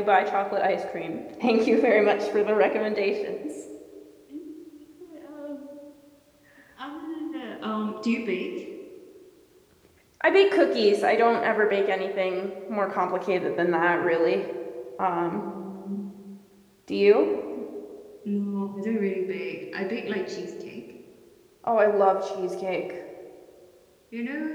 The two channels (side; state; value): both; identical; correlation 1.00